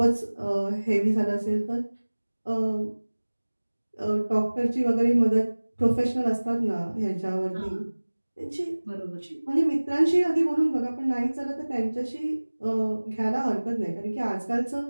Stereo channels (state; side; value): inverted; both; correlation -1.00